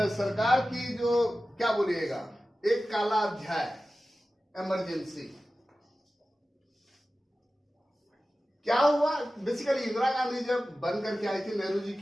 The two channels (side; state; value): both; normal; correlation 0.95